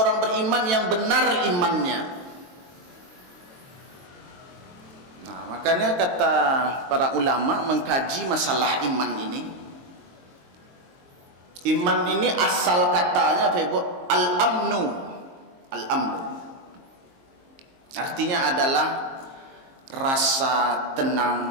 beriman yang benar imannya. Nah, makanya kata para ulama mengkaji masalah iman ini. Iman ini asal katanya, Pak Ibu, al-amnu. Al-amnu artinya adalah rasa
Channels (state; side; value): late; left; 22 ms